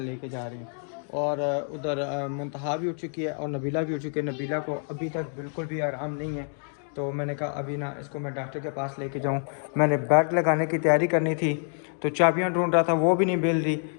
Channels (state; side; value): silent; right; 56 dB below the other